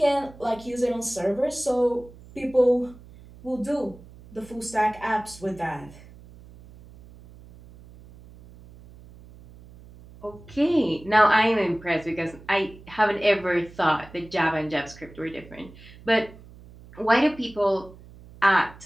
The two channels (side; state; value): right; noise; hum, 21 dB below the sound